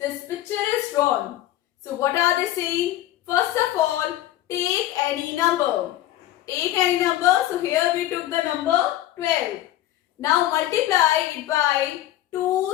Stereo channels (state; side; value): quieter; right; 14.0 dB